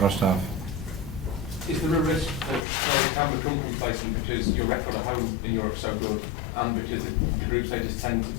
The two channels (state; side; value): drops out; right; at 2.7 s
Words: half. Is there a risk that players can become complacent because your record at home in Europe is so good, and because the group stages tend to